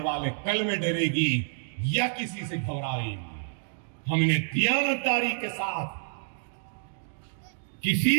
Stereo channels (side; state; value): left; silent; digital silence